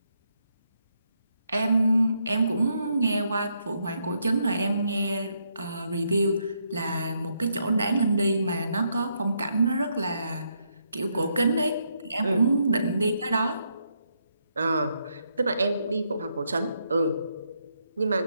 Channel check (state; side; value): inverted; both; correlation -0.78